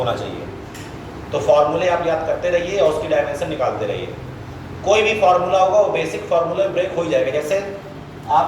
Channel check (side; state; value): both; identical; correlation 1.00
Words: चाहिए। तो फॉर्मूले आप याद करते रहिए और उसकी डायमेंशन निकालते रहिए। कोई भी फार्मूला होगा वो बेसिक फार्मूला ब्रेक हो ही जाएगा। जैसे